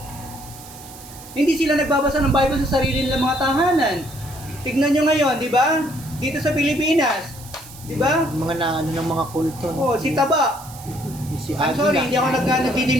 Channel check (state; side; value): noise; right; hiss, 18 dB below the sound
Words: hindi sila nagbabasa ng Bible sa sarili nilang mga tahanan. Tignan nyo ngayon, di ba? Dito sa Pilipinas, di ba? Mga na, ano ng mga kulto. Oh, si Taba. Si I'm sorry, hindi ako